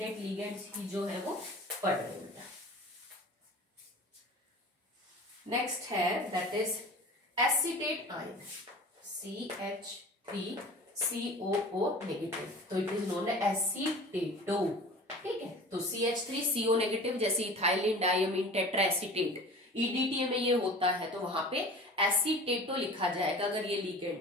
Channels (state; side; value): normal; both; correlation 0.39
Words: लिगेंड्स ही जो है वो पढ़ रहे हैं बेटा। नेक्स्ट है that is acetate ion, CH3COO negative, तो इट इज नोन एज एसीटेटो। ठीक है, तो CH3CO नेगेटिव, जैसे इथाइलिन डायमीन टेट्राएसीटेट, EDTA में ये होता है, तो वहां पे एसीटेटो लिखा जाएगा अगर ये